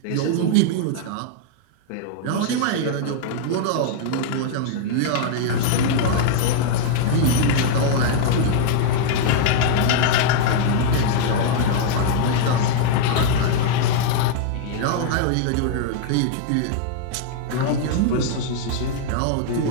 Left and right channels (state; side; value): different; both; correlation 0.00